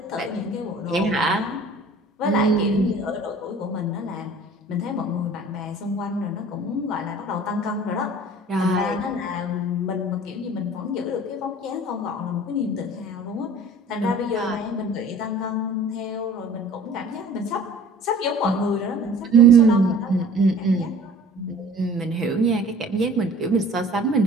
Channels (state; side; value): normal; both; correlation 0.46